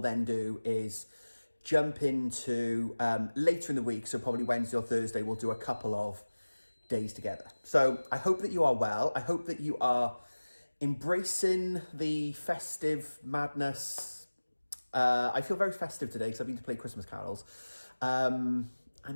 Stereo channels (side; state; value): both; inverted; correlation -1.00